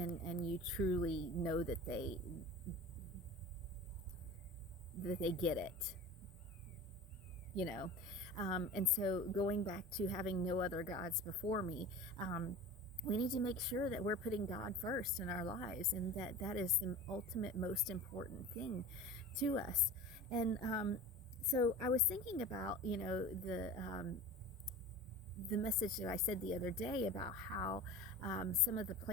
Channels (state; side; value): normal; both; correlation 0.36